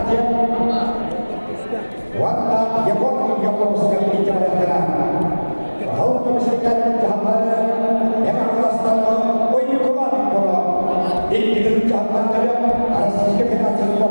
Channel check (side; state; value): both; inverted; correlation -1.00